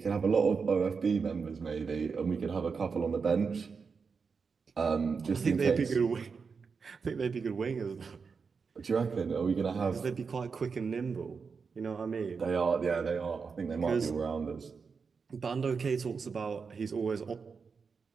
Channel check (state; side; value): quieter; left; 5.4 dB